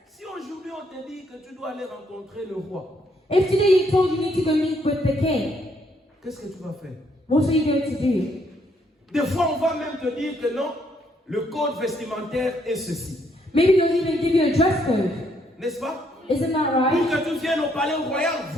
Si aujourd'hui on te dit que tu dois aller rencontrer le roi, If today you told you need to go meet with the king, qu'est-ce que tu vas faire? what are you going to do? Des fois, on va même te dire que non, le code vestimentaire est ceci. Maybe they'll even give you a dress code. N'est-ce pas? Isn't that Pour right? que tu viennes au palais royal,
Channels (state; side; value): normal; both; correlation 0.71